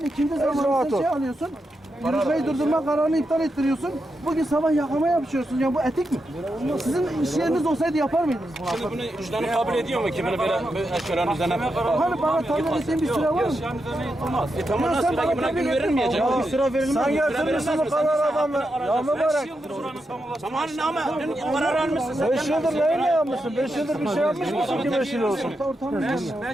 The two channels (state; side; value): normal; both; correlation 0.86